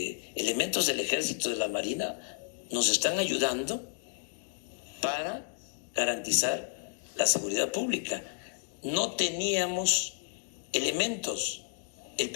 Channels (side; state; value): right; silent; digital silence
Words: del Ejército, de la Marina, nos están ayudando para garantizar la seguridad pública. No teníamos elementos. El